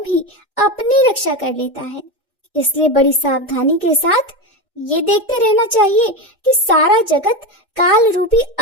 ही अपनी रक्षा कर लेता है। इसलिए बड़ी सावधानी के साथ ये देखते रहना चाहिए कि सारा जगत काल रूपी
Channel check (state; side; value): normal; both; correlation 0.17